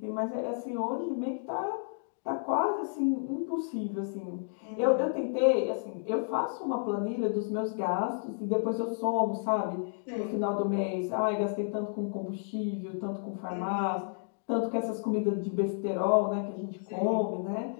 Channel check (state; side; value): silent; right; digital silence